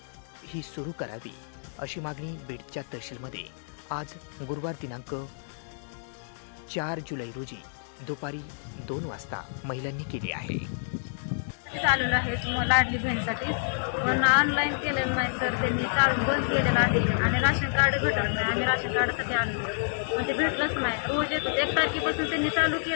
ही सुरू करावी, अशी मागणी बीडच्या तहसीलमध्ये आज गुरुवार दिनांक 4 जुलै रोजी दुपारी 2 वाजता महिलांनी केली आहे. चालू आहे लाडली बहिणीसाठी, पण ऑनलाईन केलेलं नाही सर. त्यांनी चालू बंद केलेलं आहे आणि राशन कार्ड भेटत नाही. आम्ही राशन कार्डासाठी आलो पण ते भेटलंच नाही. रोज येतो 1 तारखेपासून त्यांनी चालू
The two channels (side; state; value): right; silent; digital silence